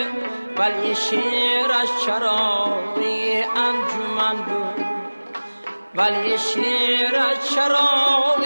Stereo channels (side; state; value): both; inverted; correlation -1.00